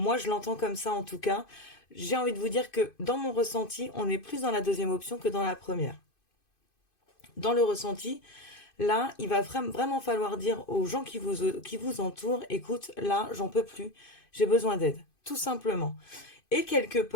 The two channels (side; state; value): right; late; 2.5 ms